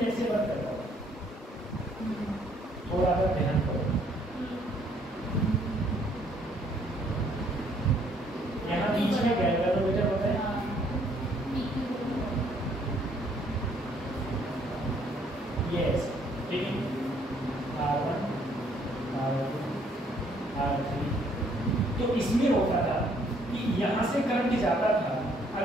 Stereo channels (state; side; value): normal; both; correlation 0.65